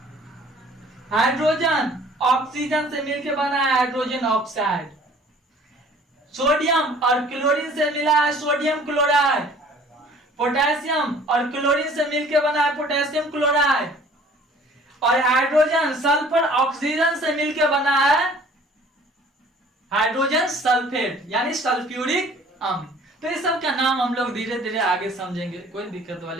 हाइड्रोजन ऑक्सीजन से मिलकर बना है हाइड्रोजन ऑक्साइड। सोडियम और क्लोरीन से मिला है सोडियम क्लोराइड। पोटेशियम और क्लोरीन से मिलकर बना है पोटेशियम क्लोराइड। और हाइड्रोजन सल्फर ऑक्सीजन से मिलकर बना है हाइड्रोजन सल्फेट यानी सल्फ्यूरिक अम्ल। तो इस सब का नाम हम लोग धीरे धीरे आगे समझेंगे, कोई दिक्कत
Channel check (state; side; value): normal; both; correlation 0.52